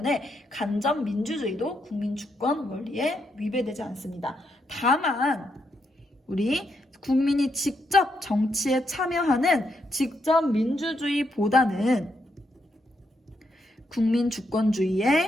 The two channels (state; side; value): normal; both; correlation 0.79